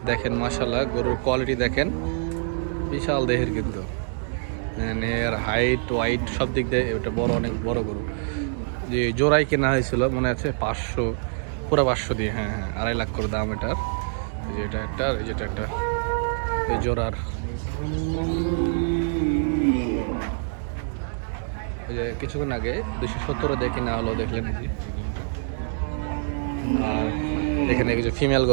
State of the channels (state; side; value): silent; left; digital silence